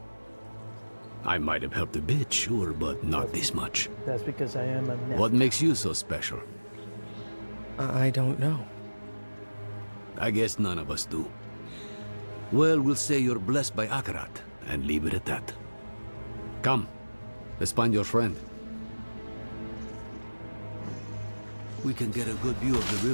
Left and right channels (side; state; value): both; inverted; correlation -1.00